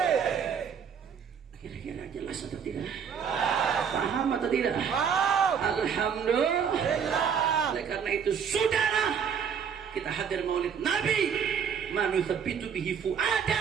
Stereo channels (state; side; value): quieter; left; 7.2 dB